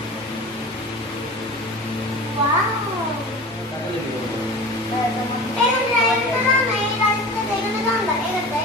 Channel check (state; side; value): normal; both; correlation 0.35